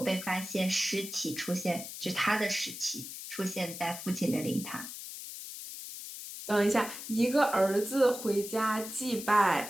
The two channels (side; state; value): left; noise; hiss, 10 dB below the sound